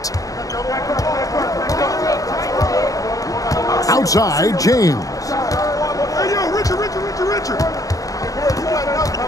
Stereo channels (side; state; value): right; late; 0.17 ms